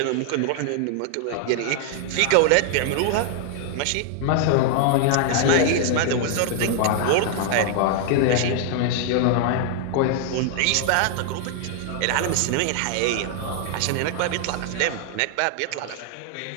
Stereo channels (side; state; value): both; different; correlation 0.00